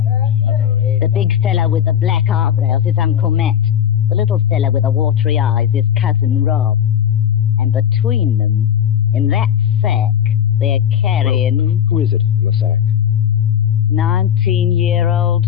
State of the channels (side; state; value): right; quieter; 9.4 dB